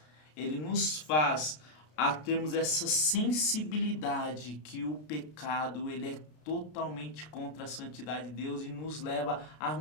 a termos essa sensibilidade que o pecado ele é totalmente contra a santidade de Deus e nos leva a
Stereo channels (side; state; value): right; late; 33 ms